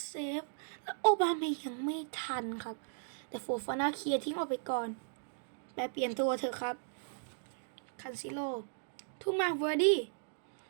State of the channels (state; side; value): silent; left; digital silence